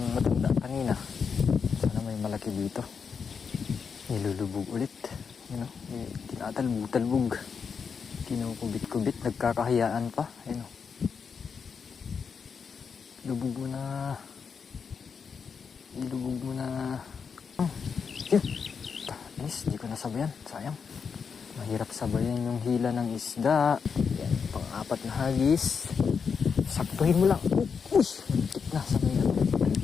matanda kanina. Sana may malaki dito. Nilulubog ulit. You know, tinatalbog-talbog. Kinukubit-kubit. Nagkakahiyaan pa. You know. Lubog mo na. Ilubog mo na. Yun. Nice, di ko nasabayan. Sayang. Mahirap sabayan yung hila ng isda. Yan, pang-apat na hagis. Saktuhin mo lang. Uy, mantik na sa mga.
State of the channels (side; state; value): right; quieter; 6.1 dB